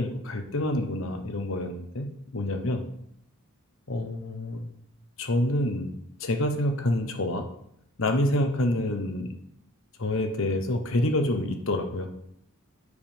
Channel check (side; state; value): both; normal; correlation 0.51